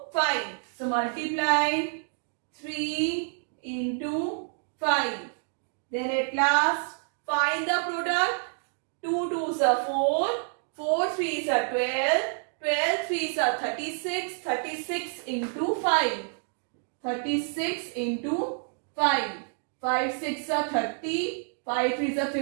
5. So multiply 3 into 5. Then at last find the product. 2 2s are 4, 4 3s are 12, 12 3s are 36, 36 into 5. 36 into 5. 5 6 are 30, 5 3s are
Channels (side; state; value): left; silent; 59 dB below the other